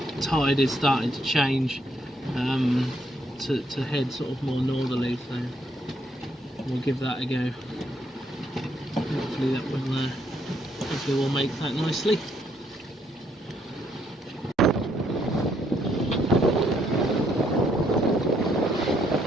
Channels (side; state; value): both; normal; correlation 0.72